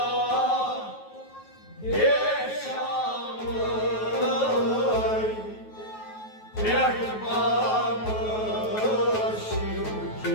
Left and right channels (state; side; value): late; right; 9.3 ms